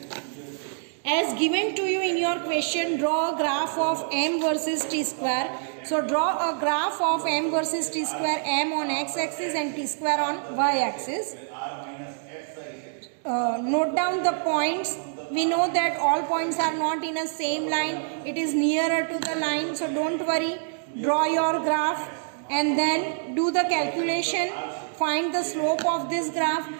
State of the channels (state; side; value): silent; left; digital silence